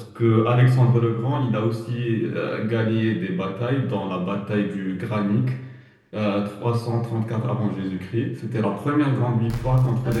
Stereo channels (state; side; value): identical; both; correlation 1.00